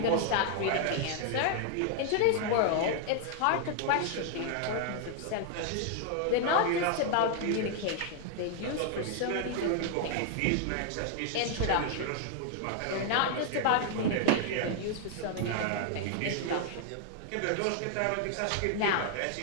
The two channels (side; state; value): both; different; correlation 0.00